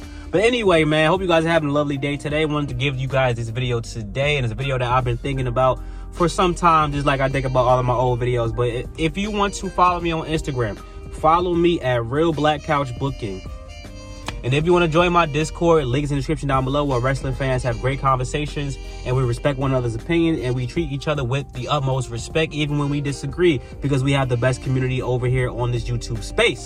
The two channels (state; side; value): identical; both; correlation 1.00